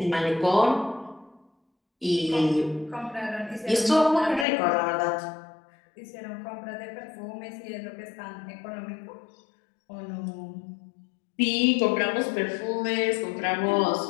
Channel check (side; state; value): right; drops out; at 4.5 s